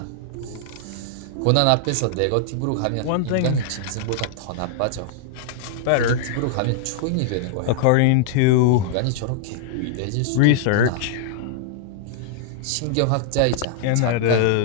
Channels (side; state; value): both; different; correlation -0.01